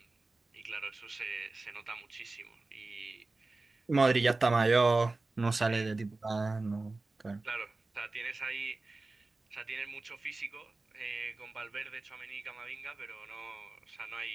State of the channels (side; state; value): left; quieter; 3.4 dB